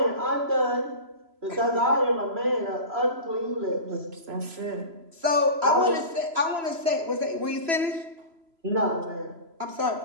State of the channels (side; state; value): left; late; 3.0 ms